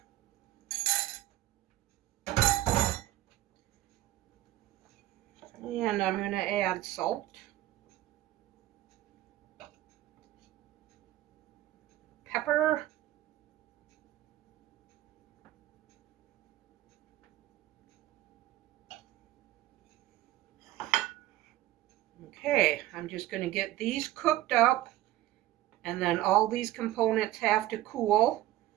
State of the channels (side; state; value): left; quieter; 15.0 dB